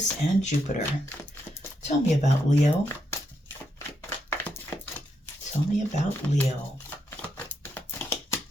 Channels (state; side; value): normal; both; correlation 0.81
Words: and Jupiter. Tell me about Leo. Tell me about Leo.